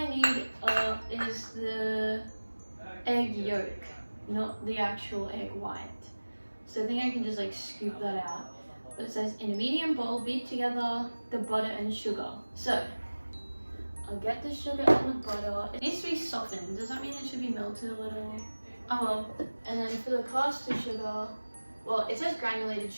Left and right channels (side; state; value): both; inverted; correlation -1.00